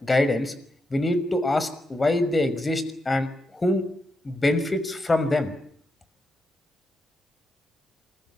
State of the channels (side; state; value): both; normal; correlation 0.84